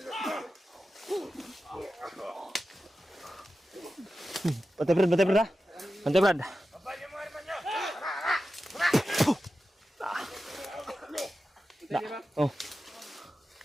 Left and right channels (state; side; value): normal; both; correlation 0.92